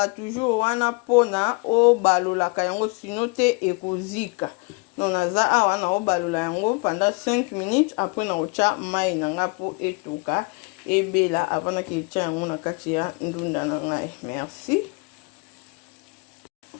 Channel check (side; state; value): right; quieter; 30.8 dB